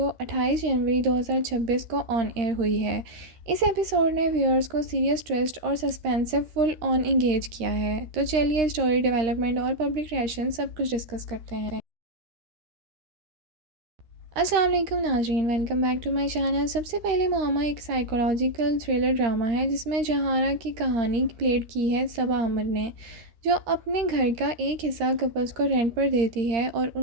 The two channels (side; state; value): left; late; 13 ms